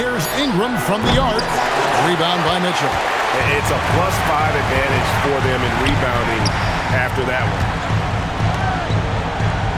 Ingram from the arc. Rebound by Mitchell. It's a +5 advantage for them in rebounding after that one.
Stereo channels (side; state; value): both; identical; correlation 1.00